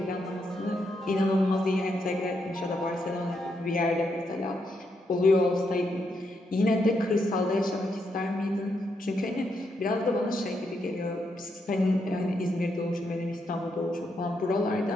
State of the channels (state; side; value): normal; both; correlation 0.80